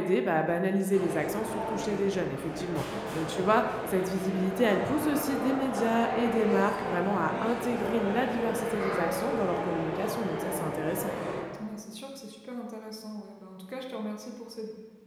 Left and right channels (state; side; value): identical; both; correlation 1.00